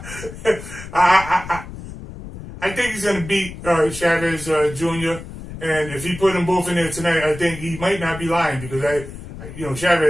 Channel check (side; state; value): left; noise; rumble, 12 dB below the sound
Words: I think he's going to beat Chavez Jr. And if he put them both in there tonight, I think he might not be lying because